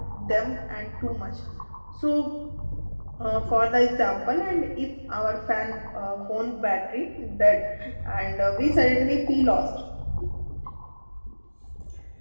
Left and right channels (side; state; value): both; inverted; correlation -1.00